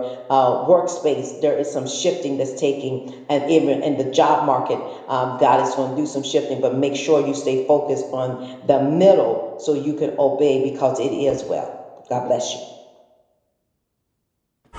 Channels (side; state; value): both; identical; correlation 1.00